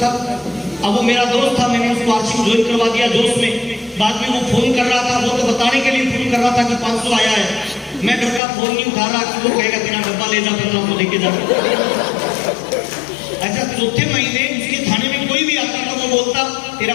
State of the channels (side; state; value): right; drops out; at 8.4 s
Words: अब वो मेरा दोस्त था, मैंने उसको आरसीएम ज्वाइन करवा दिया जोश में। बाद में वो फोन कर रहा था, वो तो बताने के लिए फोन कर रहा था कि 500 आया है। मैं घर का फोन नहीं उठा रहा कि वो कहेगा तेरा डब्बा ले जा, 15 को लेके जा। अच्छा, चौथे महीने उसके थाने में कोई भी आता तो वो बोलता तेरा